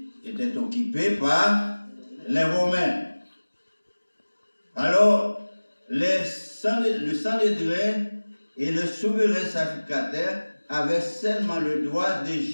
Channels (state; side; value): inverted; both; correlation -1.00